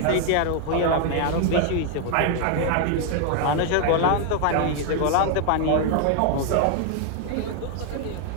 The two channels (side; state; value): both; different; correlation 0.00